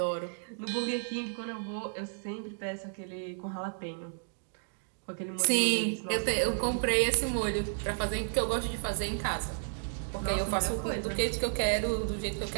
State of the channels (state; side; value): silent; left; digital silence